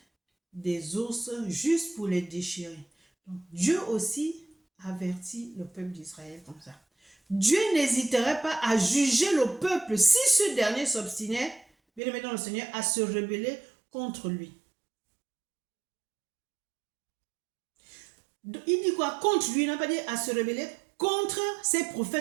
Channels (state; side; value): drops out; left; at 12.0 s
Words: des ours juste pour les déchirer. Donc, Dieu aussi avertit le peuple d'Israël comme ça. Dieu n'hésiterait pas à juger le peuple si ce dernier s'obstinait, bien aimé dans le Seigneur, à se rebeller contre lui. Il dit quoi? Contre lui, il n'a pas dit à se rebeller. Contre ses